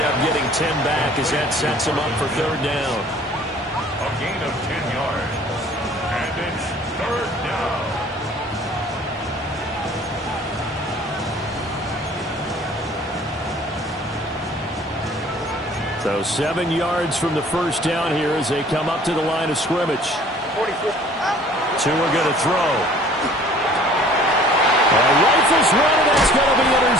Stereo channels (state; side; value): normal; both; correlation 0.52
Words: up getting 10 back as that sets him up for third down. A gain of 10 yards. And it's third down. So 7 yards from the first down here as they come up to the line of scrimmage. Tua going to throw. Rifles run, and that's going to be